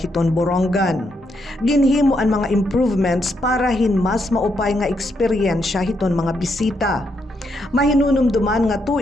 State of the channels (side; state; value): both; normal; correlation 0.78